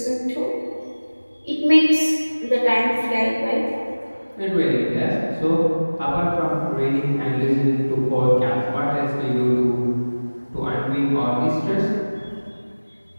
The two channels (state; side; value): inverted; both; correlation -1.00